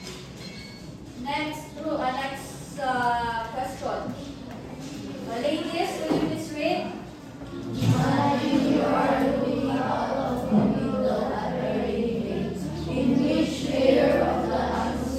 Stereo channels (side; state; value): both; identical; correlation 1.00